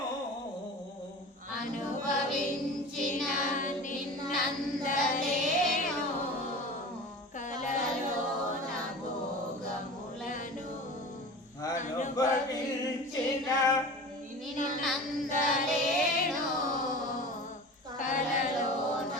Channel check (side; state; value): both; normal; correlation 0.35